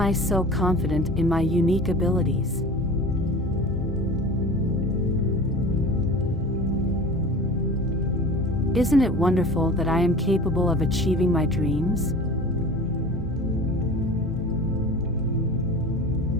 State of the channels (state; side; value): noise; left; hum, 11 dB below the sound